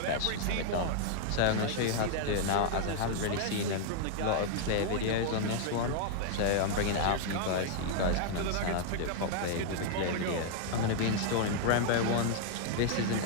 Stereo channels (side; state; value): both; different; correlation 0.00